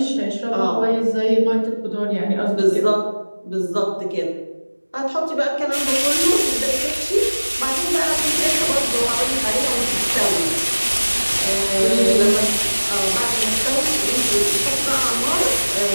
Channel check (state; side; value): inverted; both; correlation -1.00